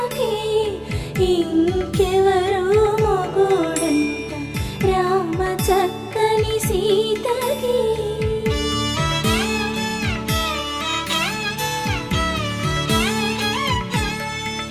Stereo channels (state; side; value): identical; both; correlation 1.00